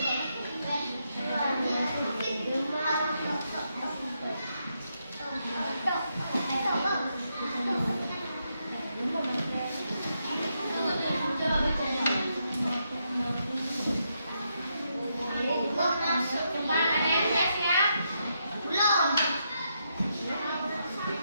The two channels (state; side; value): inverted; both; correlation -0.81